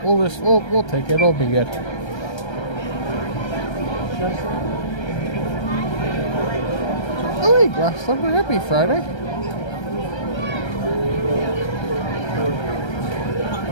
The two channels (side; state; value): right; late; 1.3 ms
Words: We'll take it. It'll be good. Oh, hey, Glass Slipper. Happy Friday.